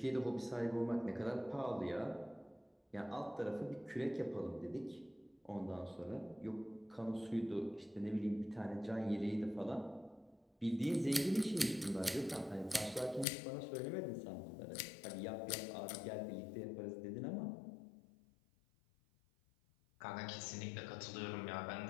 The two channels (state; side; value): drops out; right; at 13.2 s